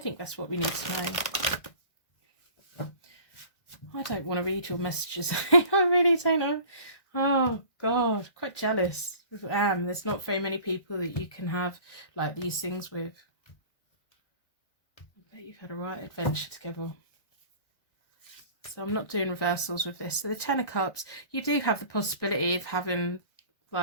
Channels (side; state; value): right; late; 1.6 ms